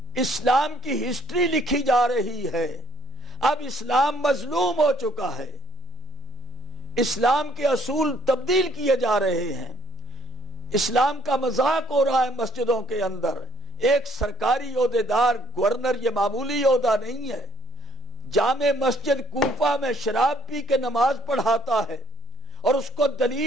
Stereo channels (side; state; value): both; normal; correlation 0.62